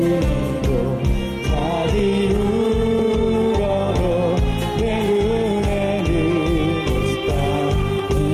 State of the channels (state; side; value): identical; both; correlation 1.00